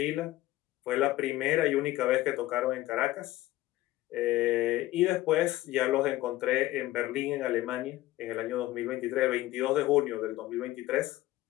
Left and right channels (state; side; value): quieter; right; 16.4 dB